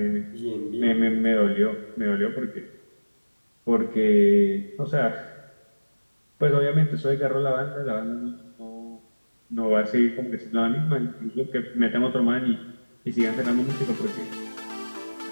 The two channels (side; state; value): both; inverted; correlation -1.00